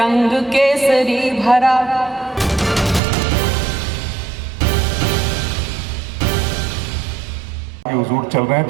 केसरी भरा, हुजूर चल रहे हैं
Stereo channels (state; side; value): drops out; left; at 3.0 s